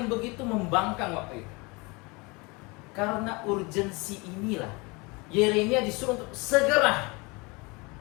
begitu membangkang waktu itu. Karena urgensi inilah Yeremia disuruh untuk segera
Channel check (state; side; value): quieter; right; 27.0 dB